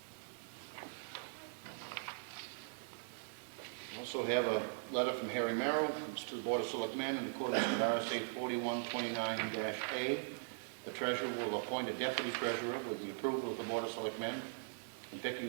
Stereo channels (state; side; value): silent; left; digital silence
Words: Also have a letter from Harry Merrill. It's to the Board of Selectmen in accordance with RSA 4129-A. The treasurer will appoint a deputy treasurer with the approval of the Board of Selectmen. In